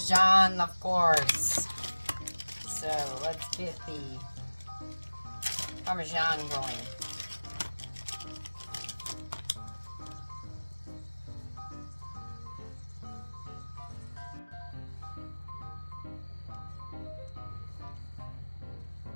of course. So let's get the Parmesan going.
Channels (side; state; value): both; inverted; correlation -1.00